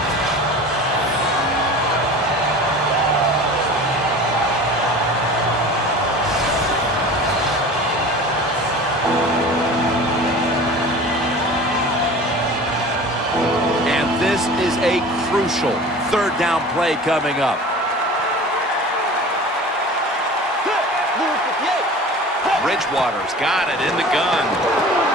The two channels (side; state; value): both; normal; correlation 0.39